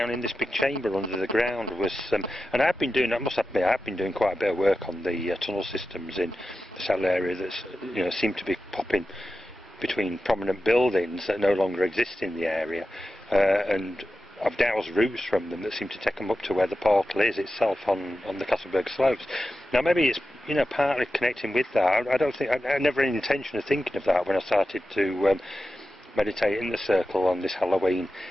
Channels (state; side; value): normal; both; correlation 0.92